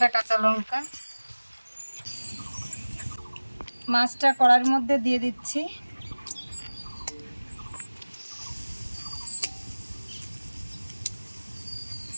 কাঁচা লঙ্কা। মাছটা কড়াইয়ের মধ্যে দিয়ে দিচ্ছি।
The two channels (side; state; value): both; inverted; correlation -1.00